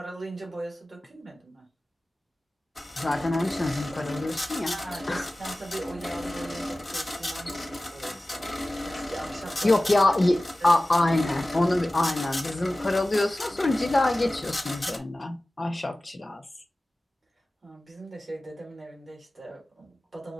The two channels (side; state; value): both; normal; correlation 0.97